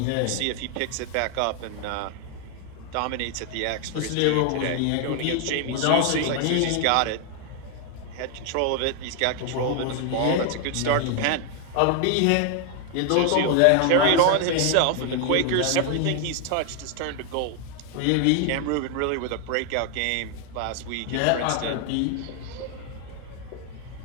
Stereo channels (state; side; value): different; both; correlation 0.00